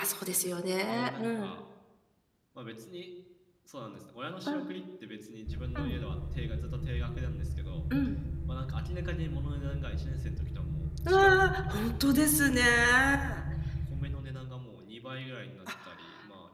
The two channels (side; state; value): both; identical; correlation 1.00